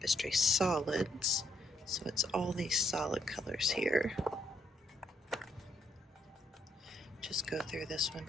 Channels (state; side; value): normal; both; correlation 0.72